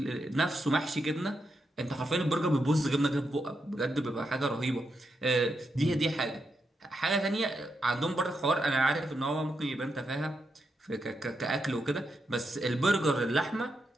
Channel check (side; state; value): both; normal; correlation 0.84